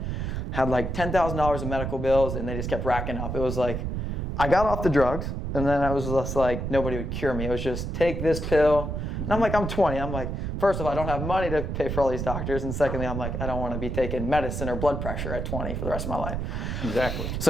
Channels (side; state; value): right; noise; rumble, 3 dB below the sound